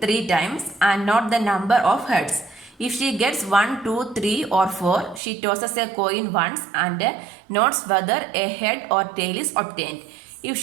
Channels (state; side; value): drops out; left; at 5.2 s